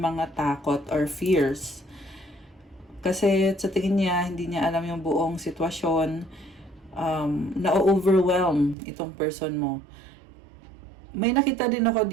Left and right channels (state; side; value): drops out; left; at 8.8 s